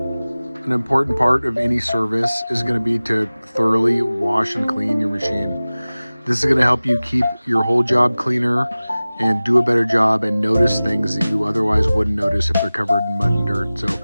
important part of any service is going to be to thoroughly wash and clean your machine. This is going to help you keep your whole job cleaner and do a better job and notice things that you otherwise wouldn't notice if they're covered in mud and dirt. So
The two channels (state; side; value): inverted; both; correlation -0.98